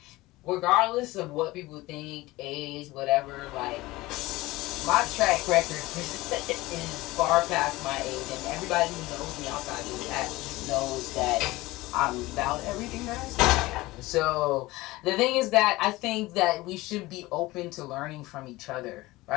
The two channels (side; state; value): right; quieter; 19.6 dB